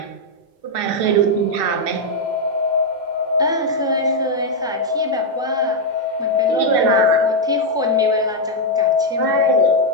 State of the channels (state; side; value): normal; both; correlation -0.01